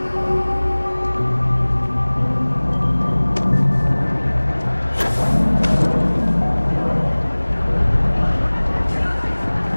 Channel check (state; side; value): inverted; both; correlation -1.00